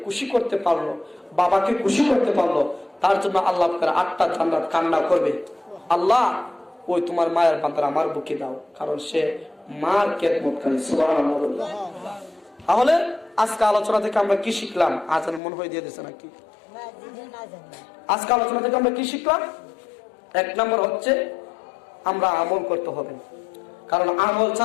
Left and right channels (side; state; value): right; drops out; at 15.4 s